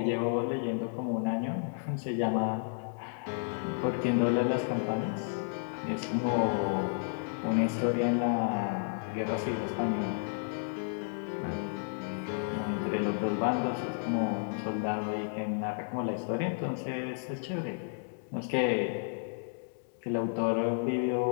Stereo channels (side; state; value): right; silent; digital silence